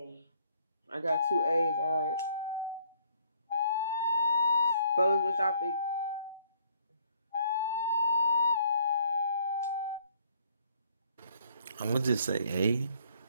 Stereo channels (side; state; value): both; inverted; correlation -0.63